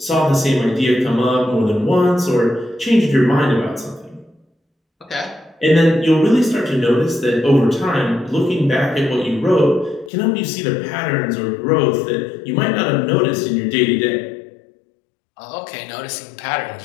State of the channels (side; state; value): right; drops out; at 10.1 s